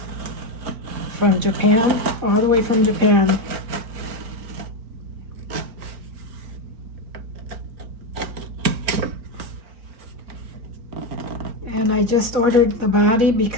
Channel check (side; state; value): left; late; 4.4 ms